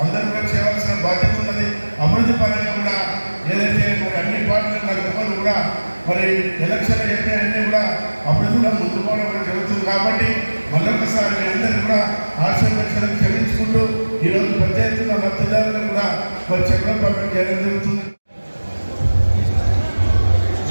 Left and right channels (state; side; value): inverted; both; correlation -1.00